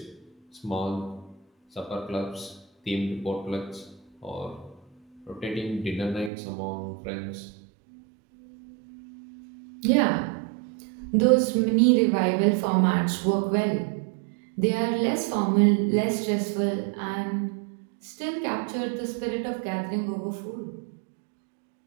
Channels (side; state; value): left; drops out; at 6.3 s